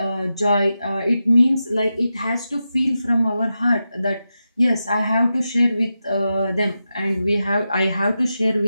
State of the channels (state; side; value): inverted; both; correlation -0.90